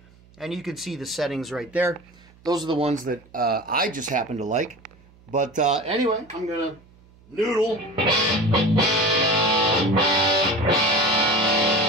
And you can see the settings right there. Those are the ones that I just happen to like. But anyway, I'm going to noodle.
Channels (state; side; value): noise; right; hum, 28 dB below the sound